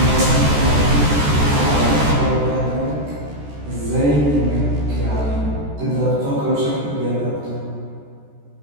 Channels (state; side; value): late; left; 14 ms